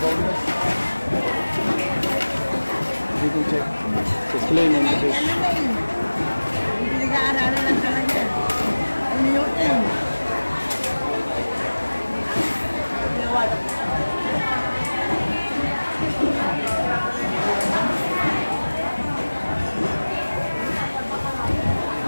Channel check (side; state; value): both; inverted; correlation -1.00